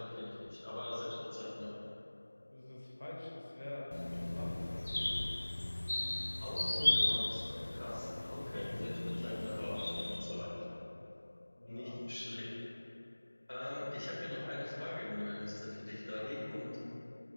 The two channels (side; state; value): both; inverted; correlation -1.00